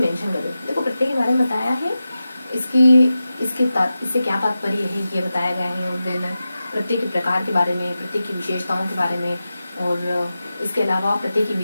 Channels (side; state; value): both; inverted; correlation -0.93